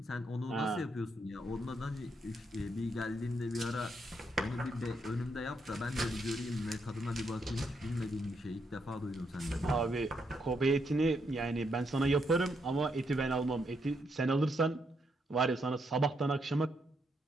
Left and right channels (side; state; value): both; normal; correlation 0.78